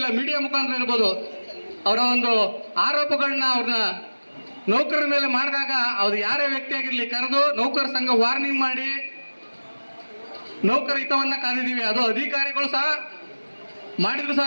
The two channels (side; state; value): both; inverted; correlation -1.00